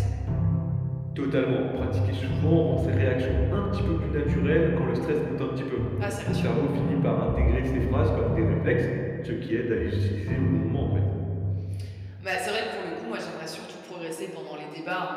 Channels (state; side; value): identical; both; correlation 1.00